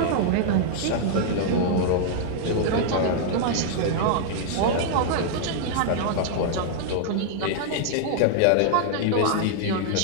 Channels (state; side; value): different; both; correlation -0.01